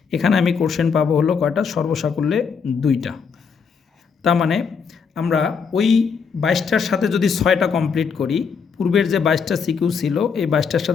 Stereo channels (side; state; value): right; quieter; 6.0 dB